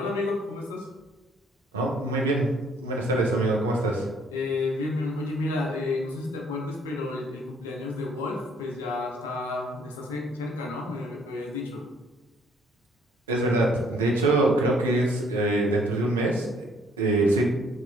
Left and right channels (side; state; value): both; normal; correlation 0.63